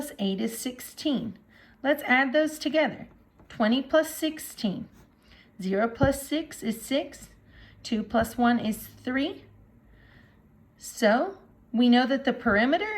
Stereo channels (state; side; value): identical; both; correlation 1.00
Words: 8 is 16. Let's add those together. 20 plus 16. 0 plus 6 is 6. 2 plus 1 is 3. So we know that the